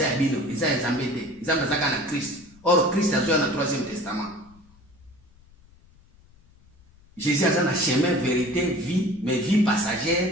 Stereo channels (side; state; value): left; noise; rumble, 28 dB below the sound